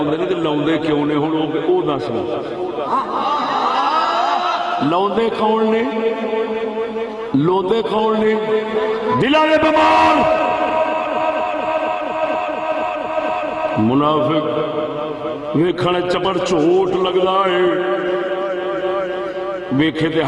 نے تے لاؤندے کیوں نے ہن او دس لاؤندے کون نے لوندے کون نے دلاں دے بیمار منافق ویکھن چپڑ چوٹ لگدا ہے ویکھے تے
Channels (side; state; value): both; identical; correlation 1.00